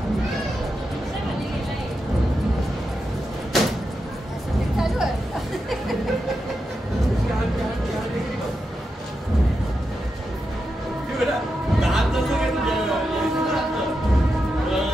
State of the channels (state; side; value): normal; both; correlation 0.87